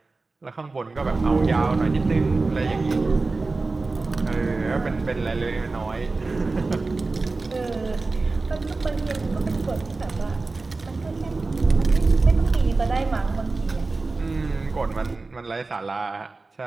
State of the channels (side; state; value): left; quieter; 3.6 dB